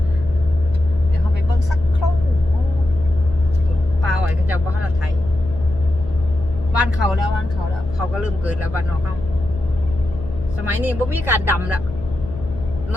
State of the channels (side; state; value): left; noise; hum, 13 dB below the sound